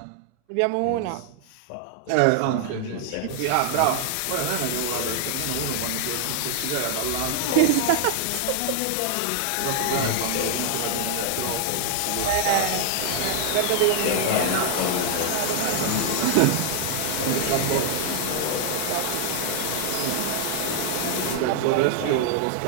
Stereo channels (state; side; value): different; both; correlation 0.00